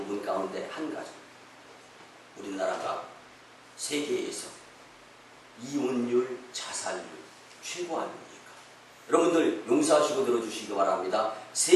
가운데 한 가지, 우리나라가 세계에서 이혼율, 자살률 최고 아닙니까? 여러분들 용서하시고 들어주시기 바랍니다.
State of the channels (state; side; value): identical; both; correlation 1.00